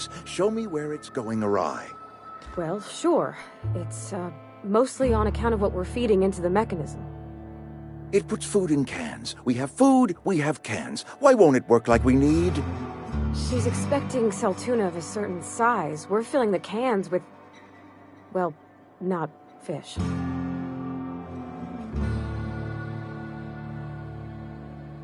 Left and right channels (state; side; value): identical; both; correlation 1.00